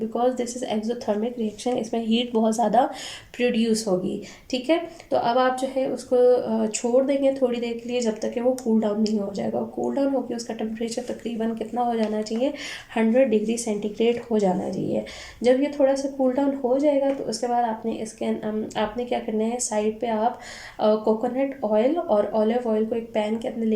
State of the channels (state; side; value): identical; both; correlation 1.00